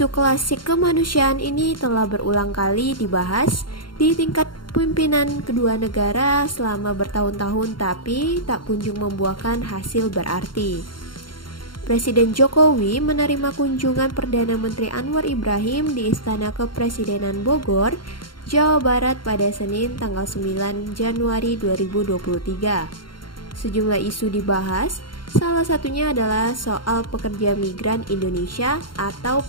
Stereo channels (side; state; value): right; late; 0.72 ms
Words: klasik kemanusiaan ini telah berulang kali dibahas di tingkat pimpinan kedua negara selama bertahun-tahun, tapi tak kunjung membuahkan hasil berarti. Presiden Jokowi menerima kunjungan Perdana Menteri Anwar Ibrahim di Istana Kepresidenan Bogor, Jawa Barat pada Senin tanggal 9 Januari 2023. Sejumlah isu dibahas, salah satunya adalah soal pekerja migran Indonesia atau